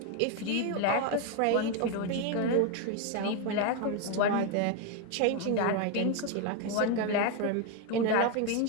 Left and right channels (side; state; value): both; different; correlation 0.01